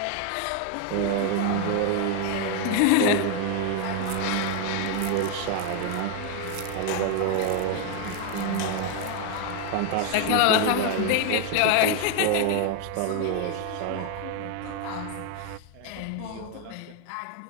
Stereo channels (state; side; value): different; both; correlation 0.00